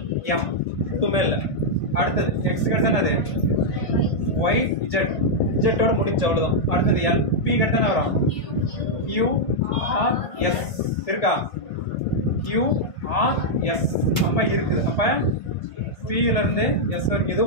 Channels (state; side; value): late; right; 1.5 ms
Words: M, எதுவுமே இல்லை. அடுத்தது எக்ஸ் கடுத்தானே, அது ஒய் இஜெட், இஜெட்டோட முடிஞ்சு, அவ்வளோதான். அடுத்தது எல், பி கடுத்தானே வரும். யூ ஆர் எஸ் இருக்கா? யூ ஆர் எஸ் அப்ப இருக்குது. அப்ப பில இருந்து எஸ் வரைக்கும் இது